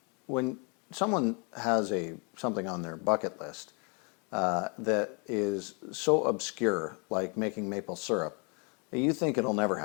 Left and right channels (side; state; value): right; quieter; 35.1 dB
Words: When someone has something on their bucket list that is so obscure, like making maple syrup, you think it'll never